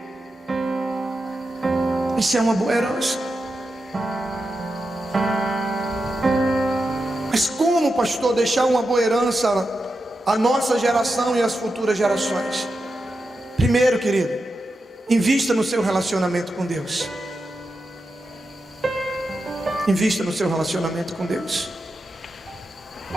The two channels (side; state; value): both; normal; correlation 0.89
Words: Isso é uma boa herança. pastor, deixar uma boa herança à nossa geração e às futuras gerações? Primeiro, querido, invista no seu relacionamento com Deus. Invista no seu relacionamento com Deus.